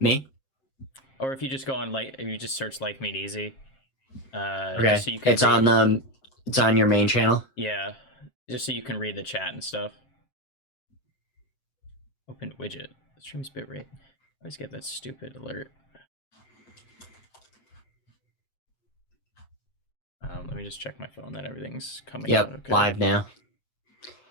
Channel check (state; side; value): late; right; 7.5 ms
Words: Or if you just go on if you just search Life Made Easy, Okay. just so you can It's on it's on your main channel. Yeah, just so you can read the chat and stuff. Open widget. Stream's bitrate. I always get that stupid alert. Let me just check my phone that everything's coming out okay. Live now.